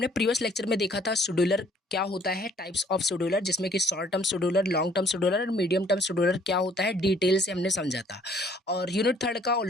प्रीवियस लेक्चर में देखा था शेड्यूलर क्या होता है, टाइप्स ऑफ शेड्यूलर, जिसमें कि short term scheduler, long term scheduler और मीडियम टर्म शेड्यूलर क्या होता है, डिटेल से हमने समझा था। और यूनिट थर्ड का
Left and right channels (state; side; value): normal; both; correlation 0.60